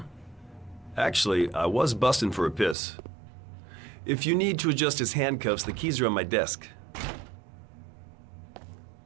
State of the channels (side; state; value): left; drops out; at 2.8 s